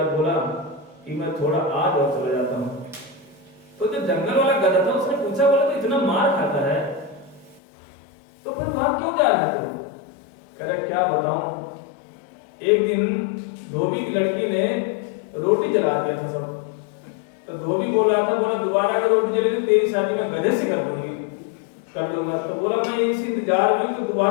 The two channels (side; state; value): right; drops out; at 7.6 s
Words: बोला कि मैं थोड़ा आज और चला जाता हूँ। तो जो जंगल वाला गधा था उसने पूछा, बोला तो इतना मार खाता है तो फिर वहां क्यों जा रहा है तू? कह रहा क्या बताऊं, एक दिन धोबी की लड़की ने रोटी जला दिया था सब। तो धोबी बोल रहा था, बोला दोबारा अगर रोटी जली तो तेरी शादी मैं गधे से कर दूंगा। तो बोला मैं इस इंतजार में तो